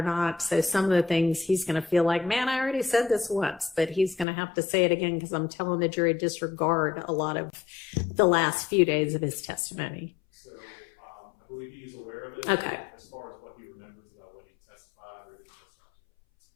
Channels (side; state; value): right; drops out; at 4.2 s